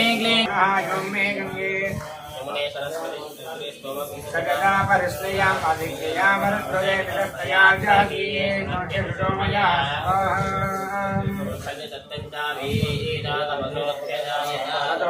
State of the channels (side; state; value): both; identical; correlation 1.00